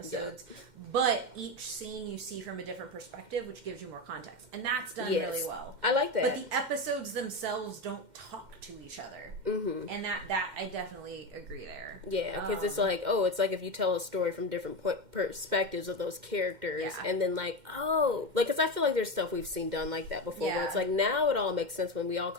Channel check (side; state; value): left; late; 2.1 ms